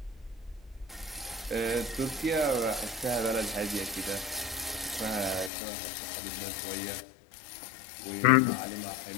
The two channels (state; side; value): drops out; right; at 5.5 s